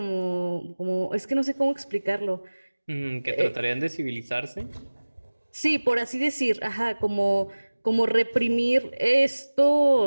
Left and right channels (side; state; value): both; inverted; correlation -1.00